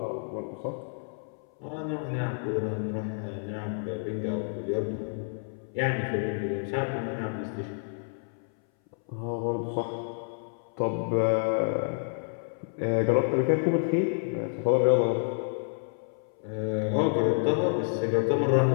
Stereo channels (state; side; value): silent; right; 59 dB below the other